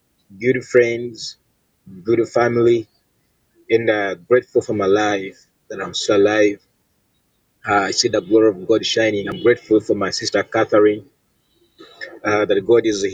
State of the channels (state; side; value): identical; both; correlation 1.00